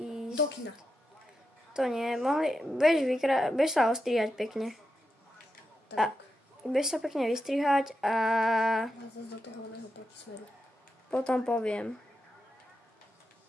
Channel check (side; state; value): both; normal; correlation 0.87